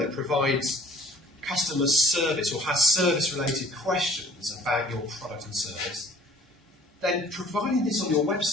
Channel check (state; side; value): normal; both; correlation 0.54